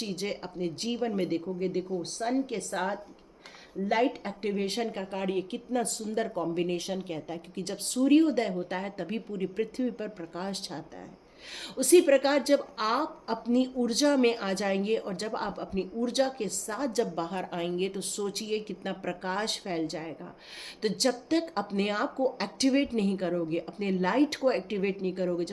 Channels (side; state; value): both; identical; correlation 1.00